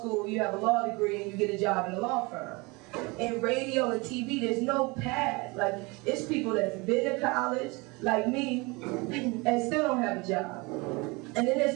you have a law degree, and you get a job in a law firm. In radio and TV, there's no path. Like, it's people that's been to college, like me, and still don't have a job. And then there's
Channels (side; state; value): left; quieter; 26.3 dB